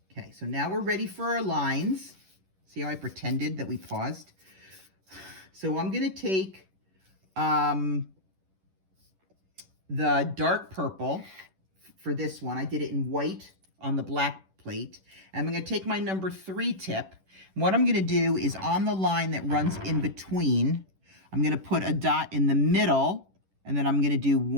Okay, so now we're ready for our lines. See how I pretended that we paused? So I'm going to take the dark purple for this one. I did it in white on the black plate. And I'm going to take my number 3 tip. What I'm going to do is on the line that runs in between, I'm going to put a dot in the middle, and then I'm going to do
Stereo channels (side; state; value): left; late; 11 ms